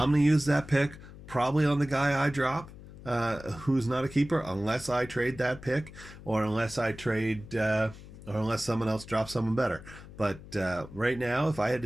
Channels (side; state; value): left; noise; hum, 17 dB below the sound